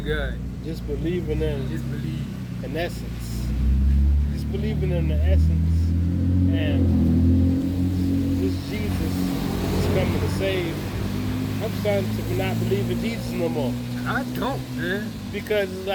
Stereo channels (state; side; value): identical; both; correlation 1.00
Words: God. Just believing in Just believe. an essence. Just believing in the essence. And this Jesus is coming to save. I'm starting to not believe in Jesus no more. I don't, man. Because it's